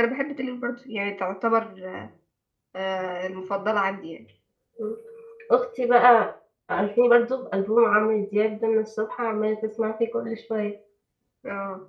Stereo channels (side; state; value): both; identical; correlation 1.00